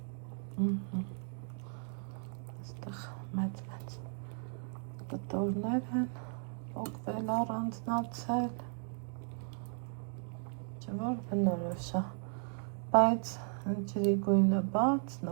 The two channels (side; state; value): left; silent; 54 dB below the other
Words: Այստեղ մեծ կտորներ են, պոկվել առանձնացել, չէ որ բնորոշ է, բայց ջրի գույնը բաց,